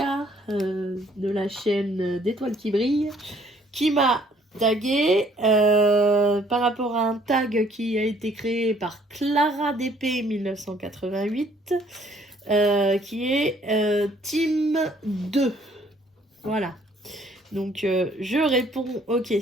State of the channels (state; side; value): normal; both; correlation 0.61